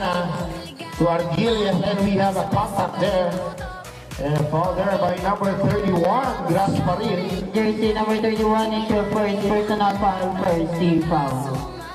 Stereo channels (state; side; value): identical; both; correlation 1.00